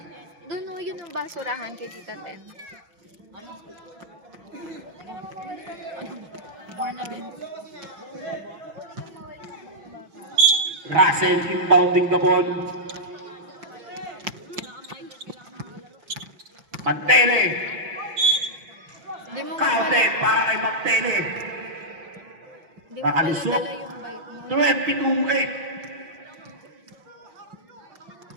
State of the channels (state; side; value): late; left; 6.2 ms